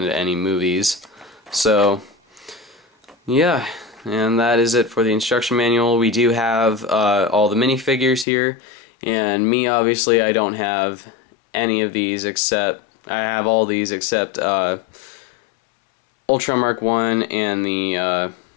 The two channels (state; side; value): drops out; right; at 8.2 s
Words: any movies. So yeah, and that is it for the instruction manual. We do have all the minifigures here, and me, obviously, I don't have any of these except, I have all these except Ultron Mark 1 and the